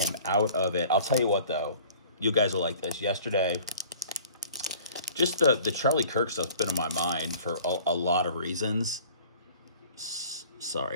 out of it. I'll tell you what, though. You guys will like this. Yesterday, just the Charlie Kirk stuff's been in my mind for a lot of reasons.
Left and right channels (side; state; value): both; inverted; correlation -0.49